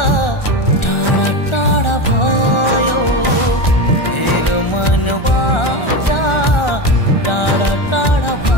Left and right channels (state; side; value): late; right; 1.4 ms